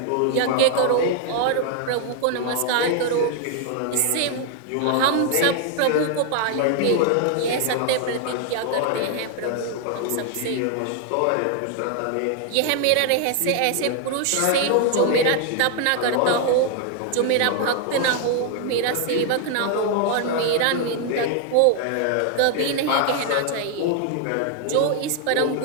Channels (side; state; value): both; different; correlation 0.00